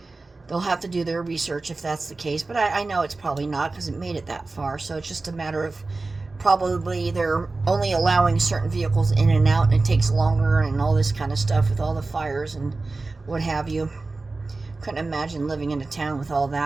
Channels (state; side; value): quieter; left; 3.5 dB